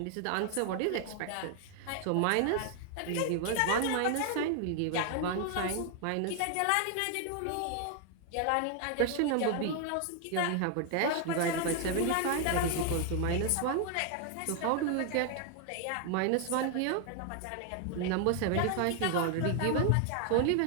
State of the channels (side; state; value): both; different; correlation 0.00